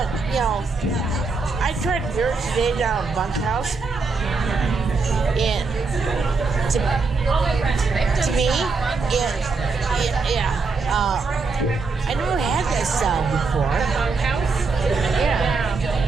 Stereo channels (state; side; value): quieter; left; 4.3 dB